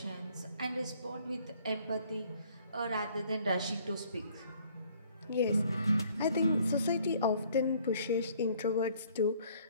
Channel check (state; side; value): inverted; both; correlation -0.60